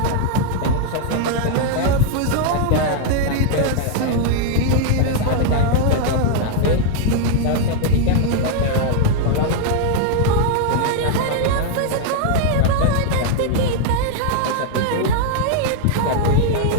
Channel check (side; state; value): both; different; correlation 0.00